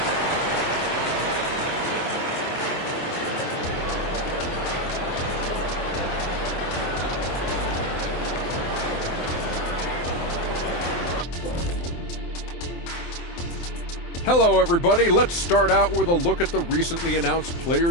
Hello, everybody. Let's start out with a look at the recently announced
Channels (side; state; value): right; late; 23 ms